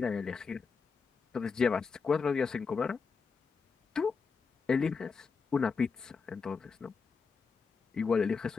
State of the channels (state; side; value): quieter; right; 5.2 dB